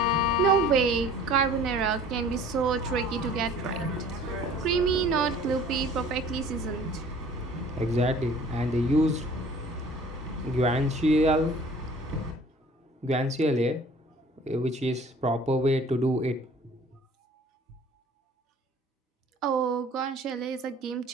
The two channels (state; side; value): normal; both; correlation 0.49